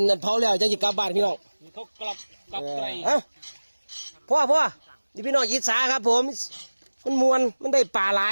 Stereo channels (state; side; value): inverted; both; correlation -1.00